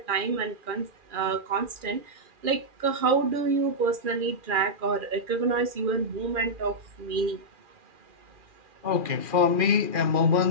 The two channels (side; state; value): left; late; 2.4 ms